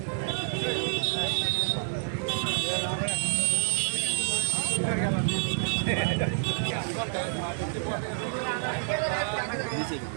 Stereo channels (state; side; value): silent; left; digital silence